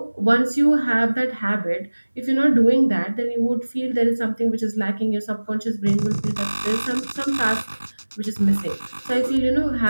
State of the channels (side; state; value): both; inverted; correlation -1.00